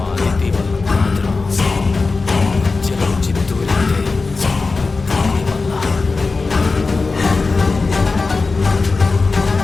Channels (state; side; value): quieter; right; 4.0 dB